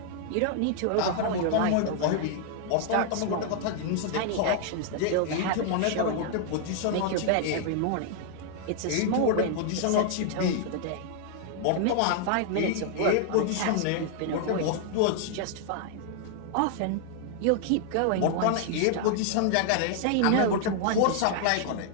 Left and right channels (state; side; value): different; both; correlation 0.00